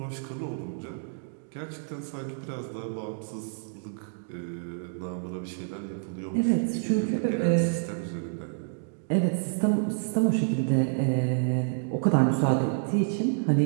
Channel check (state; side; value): silent; left; digital silence